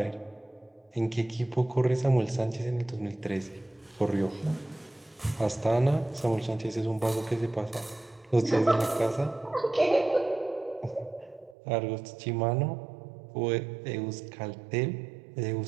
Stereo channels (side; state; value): left; drops out; at 11.6 s